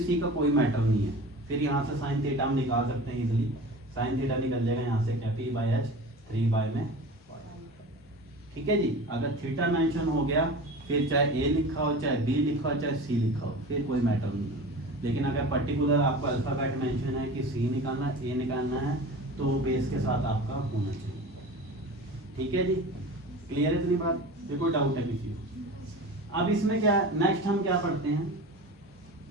सी का कोई मैटर नहीं है, फिर यहाँ से साइन थीटा हम निकाल सकते हैं इजिली, साइन थीटा निकल जाएगा यहाँ से क्या पी बाई एच 3 बाई में, ठीक है जी। अगर थीटा मेंशन हो गया फिर चाहे ए लिखा हो, चाहे बी लिखा हो, चाहे सी लिखा हो, फिर कोई मैटर नहीं है। लेकिन अगर पर्टिकुलर आपको अल्फाबेट मेंशन है कि सी निकालना है, ए निकालना है, तो बेस के साथ आपका होना चाहिए, ठीक है जी। क्लियर है इतनी बात? ये कोई डाउट है किसी को? अब इसमें क्या नेक्स्ट हम क्या पढ़ते हैं,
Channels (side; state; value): both; normal; correlation 0.35